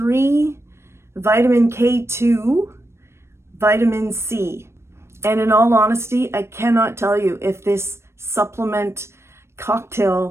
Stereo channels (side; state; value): left; late; 0.13 ms